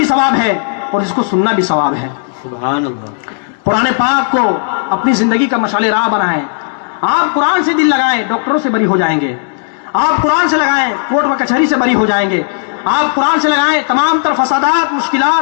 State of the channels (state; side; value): silent; right; digital silence